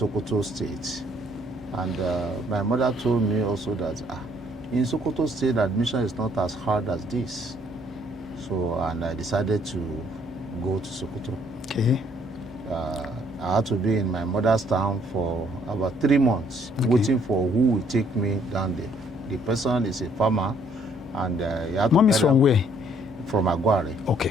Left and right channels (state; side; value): normal; both; correlation 0.64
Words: State, and my mother told me also that in Sokoto State admission is not as hard as this. So, and I decided to go to Sokoto. Okay. I had to be in my mother's town for about 3 months, waiting for who will take me down there. The person is a farmer, and he had Mom is from where? From Aguare.